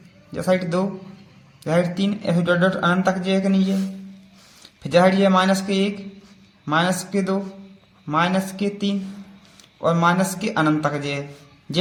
या साइड 2, या साइड 3, ऐसे डॉट डॉट अनंत तक जाएगा नहीं है। फिर जहाँ ये -1 -2 -3 और -अनंत तक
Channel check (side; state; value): both; identical; correlation 1.00